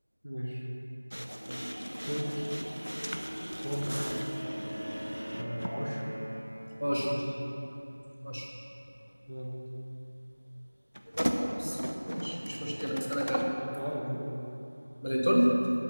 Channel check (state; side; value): inverted; both; correlation -1.00